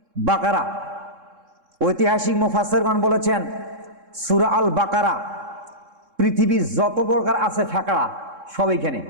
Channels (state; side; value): late; left; 3.7 ms